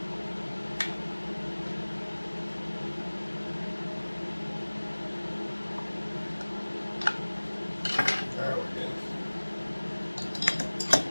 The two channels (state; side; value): inverted; both; correlation -1.00